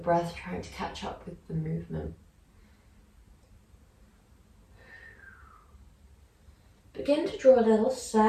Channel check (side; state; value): both; identical; correlation 1.00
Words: trying to catch up with the movement. Begin to draw little